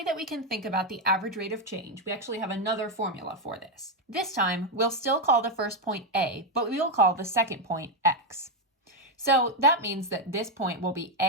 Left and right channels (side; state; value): both; normal; correlation 0.04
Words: that we can think about the average rate of change, we actually have another formula for this. This time, we'll still call the first point a, but we will call the second point x. So that means that this point will be